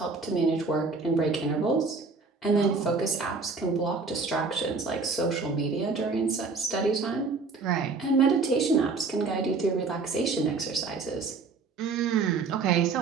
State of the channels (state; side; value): quieter; left; 4.4 dB